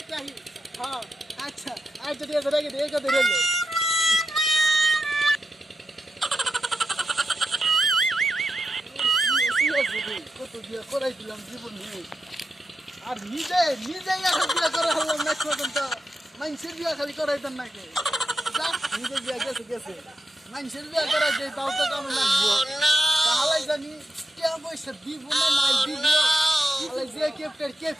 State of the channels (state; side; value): normal; both; correlation 0.87